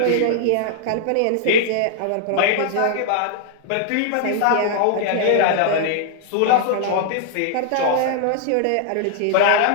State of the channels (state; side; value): different; both; correlation -0.01